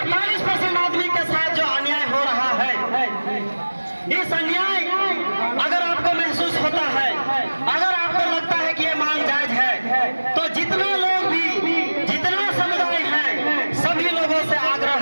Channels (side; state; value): both; inverted; correlation -1.00